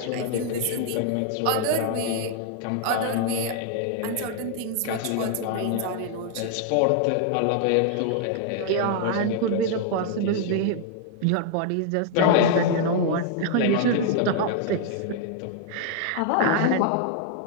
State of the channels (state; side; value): different; both; correlation 0.00